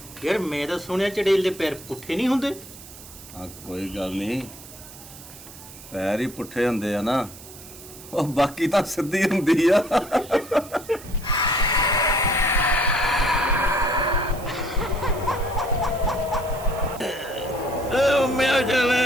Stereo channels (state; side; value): noise; right; hiss, 17 dB below the sound